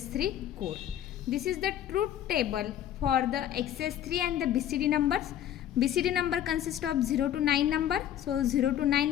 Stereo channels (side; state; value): right; quieter; 11.0 dB